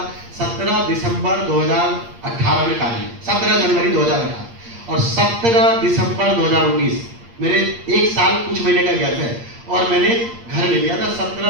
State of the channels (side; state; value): left; late; 8.6 ms